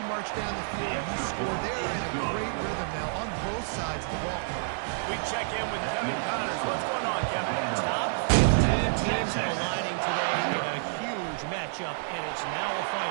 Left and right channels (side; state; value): left; silent; digital silence